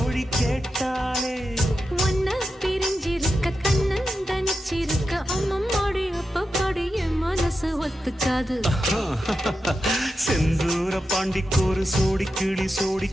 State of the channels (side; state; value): both; normal; correlation 0.89